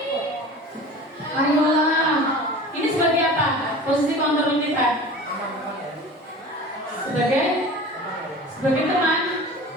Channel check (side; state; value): both; normal; correlation 0.38